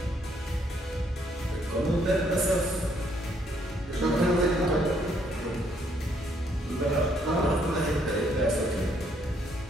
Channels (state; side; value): normal; both; correlation 0.69